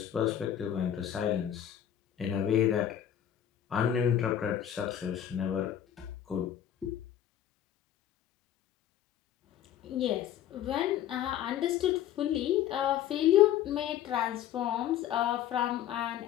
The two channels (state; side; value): quieter; right; 10.7 dB